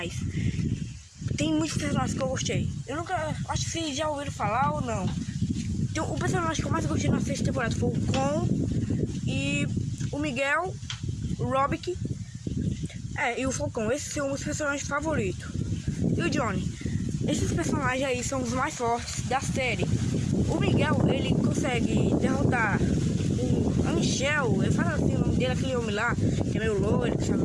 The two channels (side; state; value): both; identical; correlation 1.00